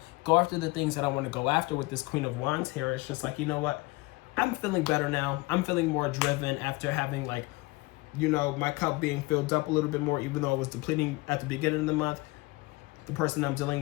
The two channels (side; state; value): right; quieter; 23.3 dB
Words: go after the things that I want to go after with this Queen of Wands here. It's just like, you know what? I'm feeling better now. I'm feeling more driven after having like, you know, my cup being filled up a little bit more, even though it was depleting at the beginning of the month. The person I'm